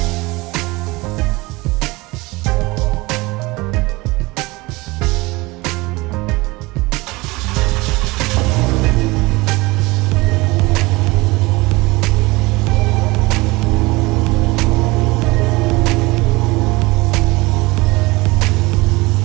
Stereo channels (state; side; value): quieter; left; 22.6 dB